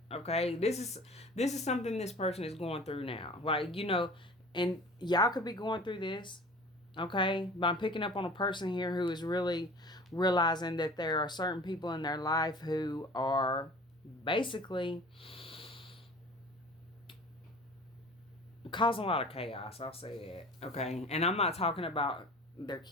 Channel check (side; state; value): both; normal; correlation 0.43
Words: okay? This is something this person is going through now. Like, and y'all could be going through this. Okay, but I'm picking up on a person here who is really realizing that there are certain people in their life who are basically causing a lot of chaos. I'll say it. Okay, and I'm not talking about their